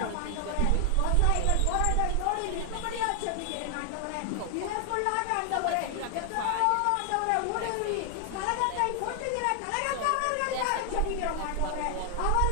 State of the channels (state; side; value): different; both; correlation 0.00